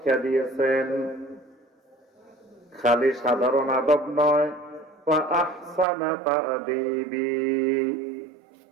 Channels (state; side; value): drops out; left; at 5.9 s